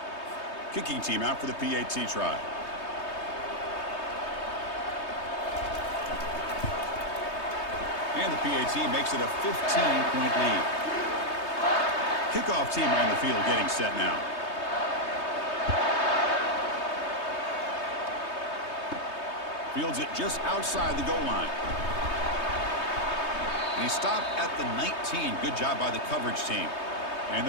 Kicking team out for the PAT try. And the PAT makes it a 15-point lead. Kickoff team on the field getting set now. Fields it just outside the goal line. And he stopped at the 19. Good job by the coverage team. And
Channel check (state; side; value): late; right; 3.2 ms